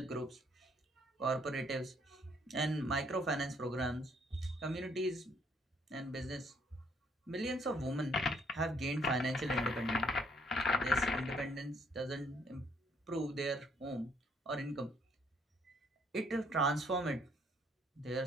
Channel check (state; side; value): normal; both; correlation 0.67